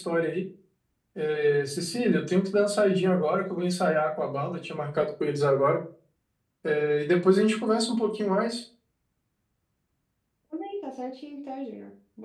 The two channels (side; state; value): both; identical; correlation 1.00